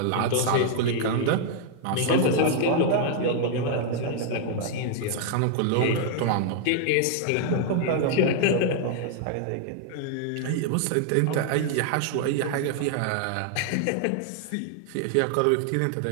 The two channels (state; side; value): different; both; correlation 0.00